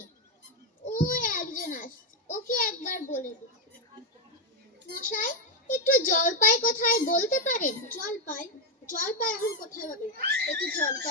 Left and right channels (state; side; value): normal; both; correlation 0.03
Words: ওই একজন আসছে, ওকে একবার বলে দিই। মশাই, একটু জলপাই কোথায় বলতে পারেন? জলপাই? জলপাই এখন কোথায় পাবে? একটু